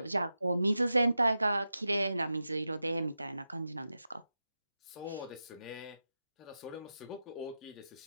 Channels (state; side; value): inverted; both; correlation -0.91